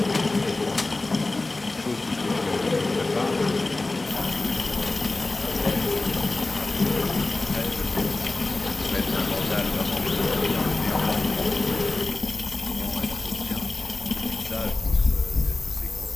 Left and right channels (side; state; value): right; quieter; 3.1 dB